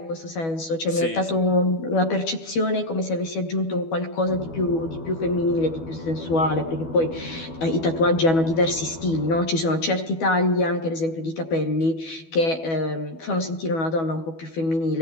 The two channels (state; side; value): late; right; 12 ms